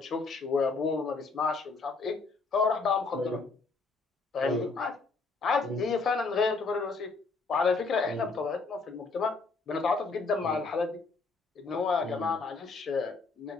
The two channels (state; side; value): quieter; right; 4.1 dB